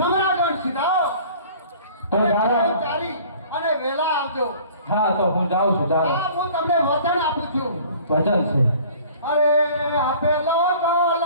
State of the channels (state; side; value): inverted; both; correlation -0.49